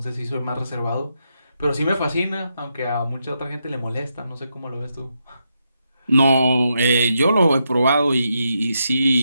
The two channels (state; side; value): inverted; both; correlation -0.83